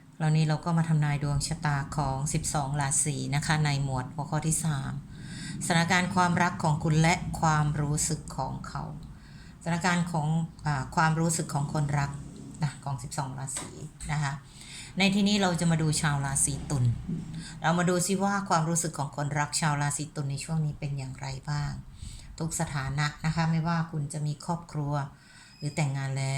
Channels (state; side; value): identical; both; correlation 1.00